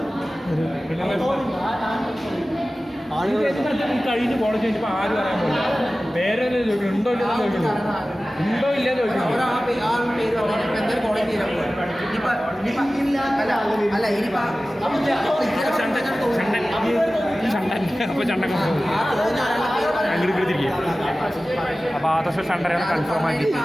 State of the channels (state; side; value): normal; both; correlation 0.96